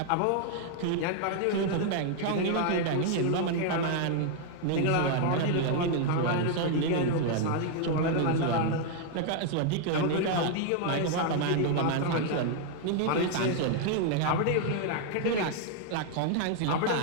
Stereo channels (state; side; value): different; both; correlation 0.00